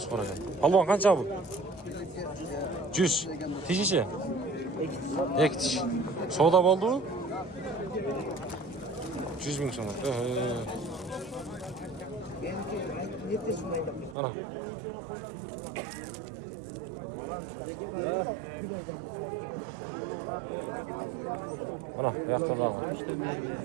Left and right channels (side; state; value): left; drops out; at 14.2 s